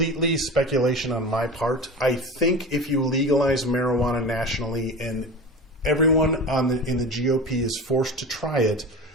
speculation on my part. I think if you legalize marijuana nationally and everyone in the GOP is forced to try it,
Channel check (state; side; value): normal; both; correlation 0.31